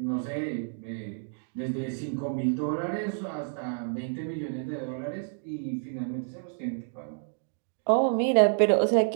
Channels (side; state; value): left; silent; digital silence